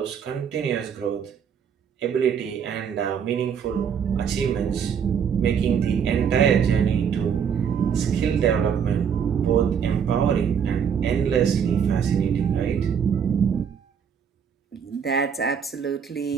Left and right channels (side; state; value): left; quieter; 7.4 dB